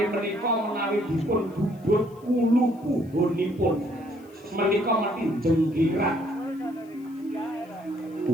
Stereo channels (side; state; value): left; noise; hiss, 30 dB below the sound